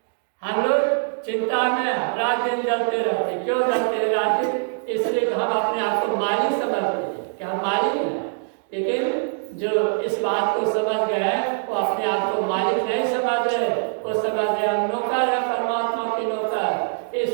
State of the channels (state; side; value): silent; left; digital silence